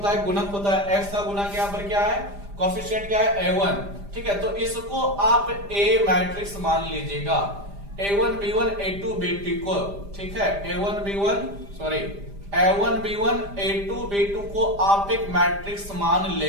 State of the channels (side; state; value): left; late; 5.0 ms